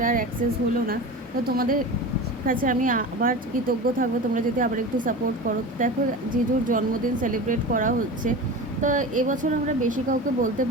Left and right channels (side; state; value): both; normal; correlation 0.30